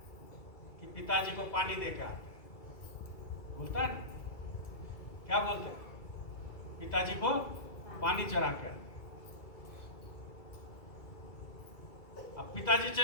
कि पिताजी को पानी दे के आते हैं। बोलता है ना, क्या बोलते हैं? पिताजी को पानी चढ़ा के आते। अब पिताजी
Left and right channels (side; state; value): right; late; 2.3 ms